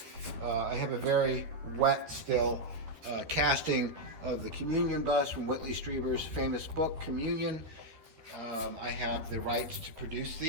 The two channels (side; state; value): left; late; 13 ms